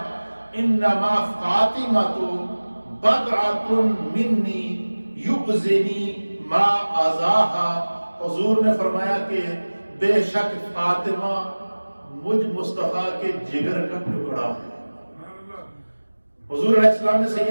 انما فاطمۃ بضعۃ منی یؤذنی ما اذاہا۔ حضور نے فرمایا کہ بے شک فاطمہ مجھ مصطفیٰ کے جگر کا ٹکڑا ہے۔ حضور علیہ السلام نے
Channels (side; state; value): both; inverted; correlation -1.00